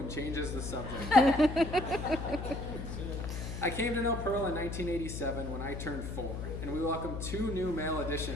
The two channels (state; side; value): noise; left; hum, 6 dB below the sound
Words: changes the subject. I came to know Pearl in 1987 when I turned 4, and we welcomed 2 new male